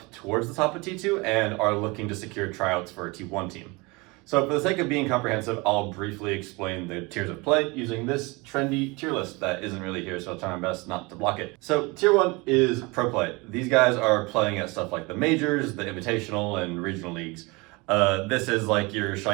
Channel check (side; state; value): left; quieter; 25.8 dB